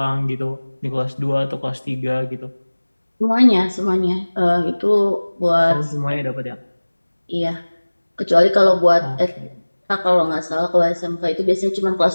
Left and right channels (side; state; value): both; inverted; correlation -1.00